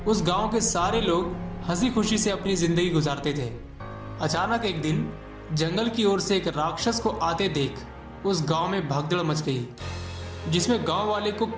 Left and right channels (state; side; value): identical; both; correlation 1.00